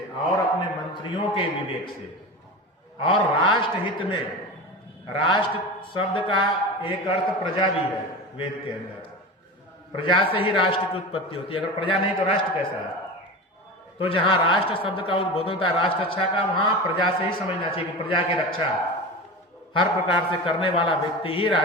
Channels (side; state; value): both; normal; correlation 0.28